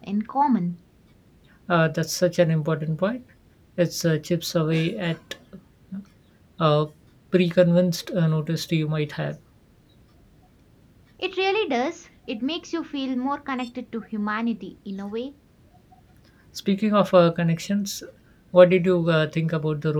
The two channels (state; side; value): identical; both; correlation 1.00